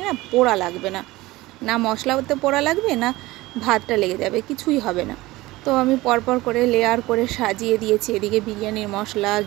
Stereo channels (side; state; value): left; quieter; 19.3 dB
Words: না পোড়া লাগবে না, না মশলাতে পোড়া লাগবে না ভাতটা লেগে যাবে, কিছুই হবে না। তো আমি পরপর করে লেয়ার করে সাজিয়ে দিয়েছি। এদিকে বিরিয়ানির মশলা,